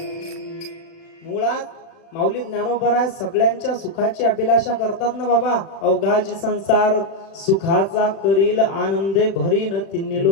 मुळात माऊली ज्ञानोबा सगळ्यांच्या सुखाची अभिलाषा करतात ना बाबा. अवघाची संसार सुखाचा करील आनंदे भरीन तिन्ही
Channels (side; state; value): right; late; 36 ms